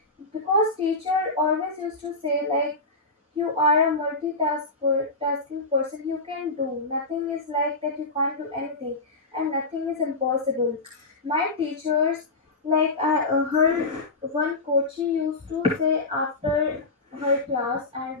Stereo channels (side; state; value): right; quieter; 3.2 dB